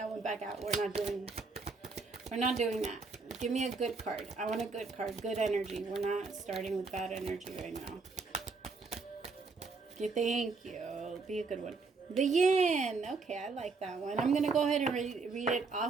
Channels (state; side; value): quieter; left; 4.2 dB